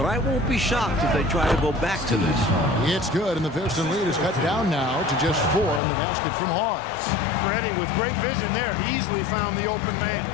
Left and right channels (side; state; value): right; drops out; at 5.8 s